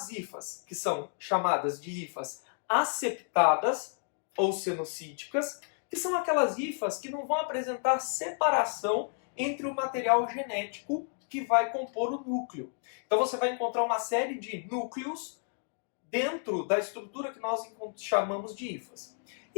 hifas, que são chamadas de hifas aseptadas ou cenocíticas, que são aquelas hifas que não vão apresentar separação entre o material genético que vai compor o núcleo. Então você vai encontrar uma série de núcleos dentro da estrutura que nós chamamos de hifas.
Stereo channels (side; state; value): right; silent; 57 dB below the other